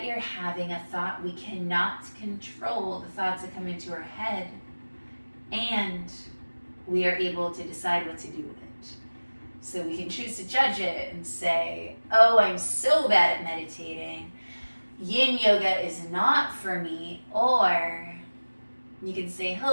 you're having a thought. We cannot control the thoughts that come into our head, and we are able to decide what to do with it. So we can choose to judge it and say, oh, I'm so bad at meditating. Yin yoga is not for me. Or you can say,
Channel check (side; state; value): both; inverted; correlation -1.00